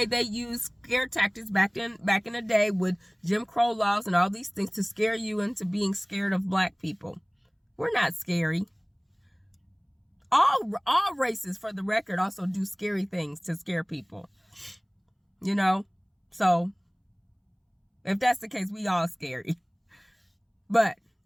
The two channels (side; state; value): both; identical; correlation 1.00